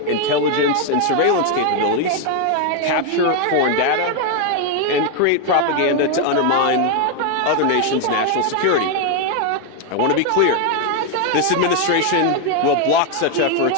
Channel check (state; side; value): different; both; correlation 0.01